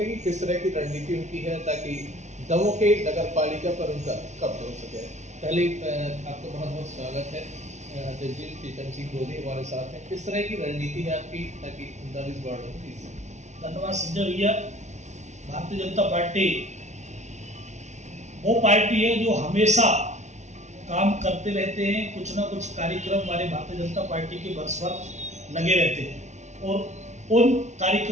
हैं कि किस तरह की रणनीति उनकी है ताकि दमोह के नगर पालिका पर उनका कब्जा हो सके। पहले आपका बहुत बहुत स्वागत है अध्यक्ष जी। प्रीतम सिंह गोदी हमारे साथ हैं। किस तरह की रणनीति है आपकी ताकि 39 वार्डों में? धन्यवाद संजय भैया। भारतीय जनता पार्टी वो पार्टी है जो हमेशा काम करते रहते हैं, कुछ ना कुछ कार्यक्रम हमारे भारतीय जनता पार्टी के वर्ष लगे रहते हैं और उन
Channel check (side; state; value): left; late; 0.33 ms